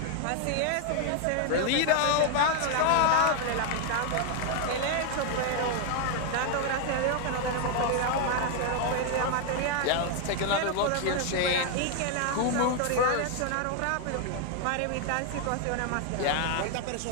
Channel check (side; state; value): both; different; correlation 0.00